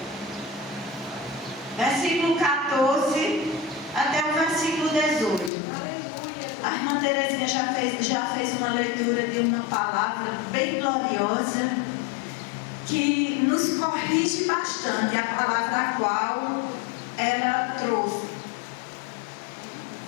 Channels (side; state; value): right; drops out; at 5.5 s